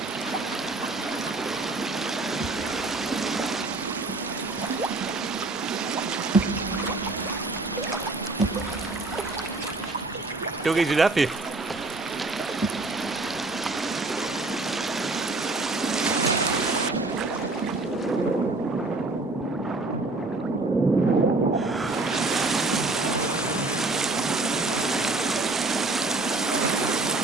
Da geht's wieder ab. Ich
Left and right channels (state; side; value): quieter; left; 3.2 dB